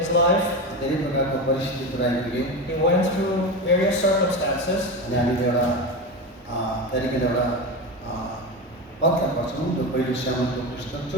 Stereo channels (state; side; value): normal; both; correlation 0.21